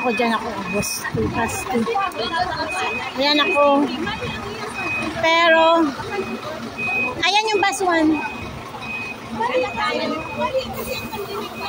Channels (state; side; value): identical; both; correlation 1.00